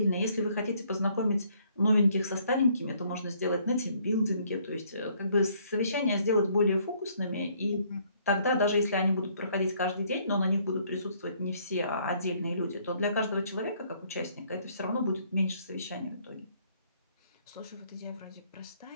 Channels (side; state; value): both; inverted; correlation -0.65